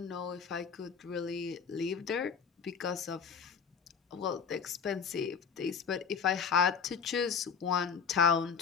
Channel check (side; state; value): right; quieter; 6.4 dB